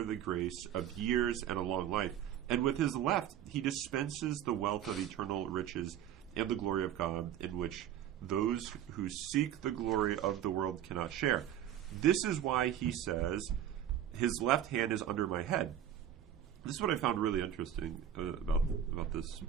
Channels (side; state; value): left; quieter; 10.3 dB